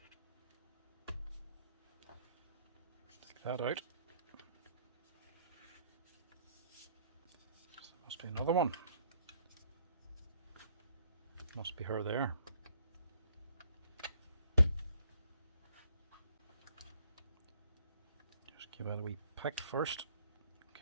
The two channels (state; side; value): inverted; both; correlation -0.63